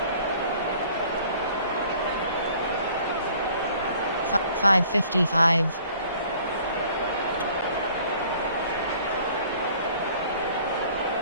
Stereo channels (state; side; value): inverted; both; correlation -0.54